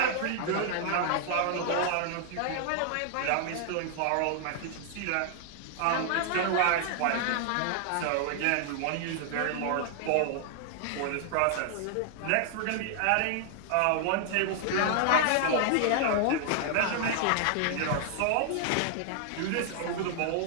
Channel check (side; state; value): both; different; correlation 0.00